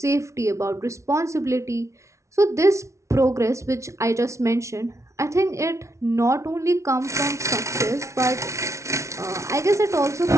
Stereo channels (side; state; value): left; late; 0.14 ms